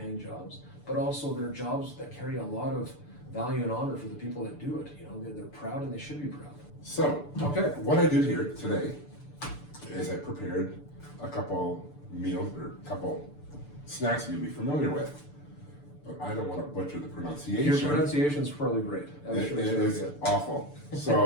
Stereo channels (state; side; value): late; right; 6.8 ms